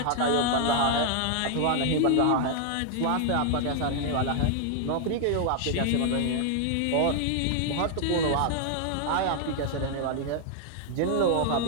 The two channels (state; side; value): different; both; correlation 0.00